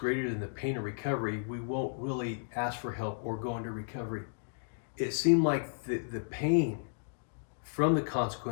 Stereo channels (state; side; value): silent; right; digital silence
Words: than the pain of recovery, we won't really ask for help or go into recovery. It seemed like the pain from the